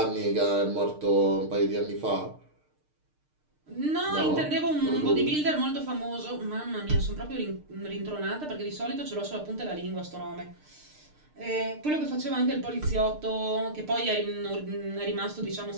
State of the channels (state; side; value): late; left; 6.6 ms